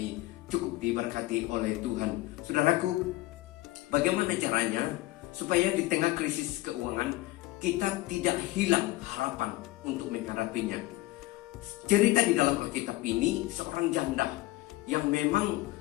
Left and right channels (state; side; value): quieter; right; 18.4 dB